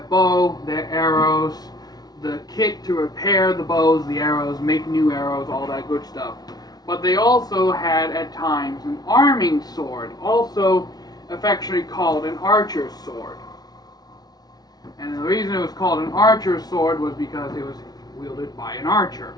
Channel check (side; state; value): right; late; 0.19 ms